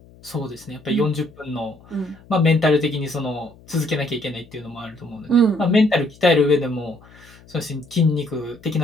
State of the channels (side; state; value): left; noise; hum, 25 dB below the sound